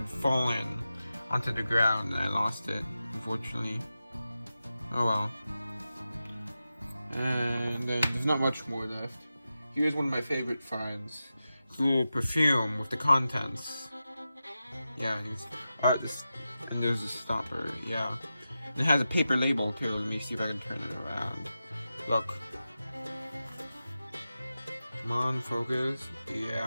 fallen onto the ground and I lost it, unfortunately. Oh well. And then there's not much more left. Here's one of my favorite finds. It's a little perfume with the contents. Yeah, and there's a stopper, yeah. And it has a paper label too. Let me see if I can turn it around. Look. Come on, focus.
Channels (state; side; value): inverted; both; correlation -0.92